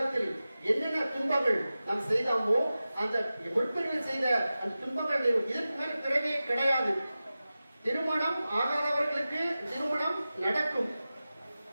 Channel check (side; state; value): both; inverted; correlation -0.95